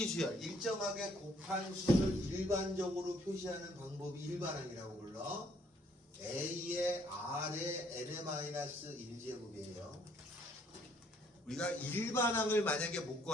일정하게 곱한 수를 일반적으로 표시하는 방법이 일반항이라고 불러. a의 r의 n-1제곱이에요. 우리가 일반항을 만약에 못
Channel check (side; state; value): both; normal; correlation 0.65